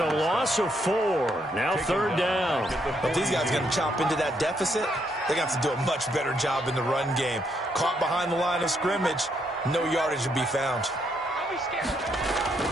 loss of 4. Now 3rd down. If these guys are going to chop into that deficit, they're going to have to do a much better job in the run game. Caught behind the line of scrimmage, no yardage to be found.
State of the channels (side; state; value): both; normal; correlation 0.75